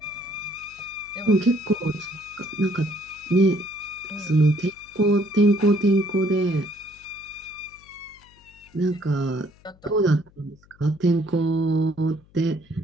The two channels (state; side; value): noise; left; hum, 28 dB below the sound